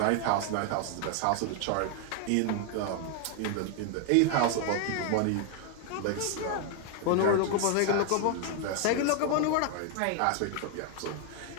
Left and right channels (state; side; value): different; both; correlation 0.00